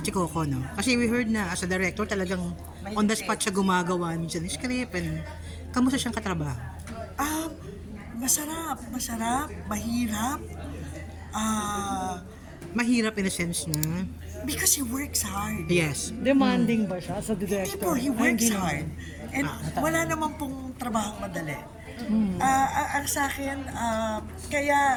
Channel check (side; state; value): both; identical; correlation 1.00